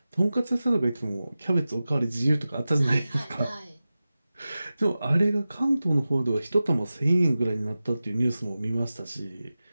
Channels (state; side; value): inverted; both; correlation -0.95